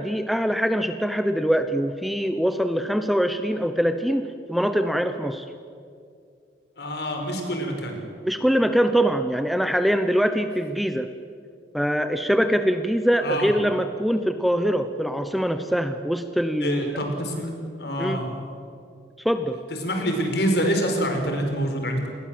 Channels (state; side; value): normal; both; correlation 0.82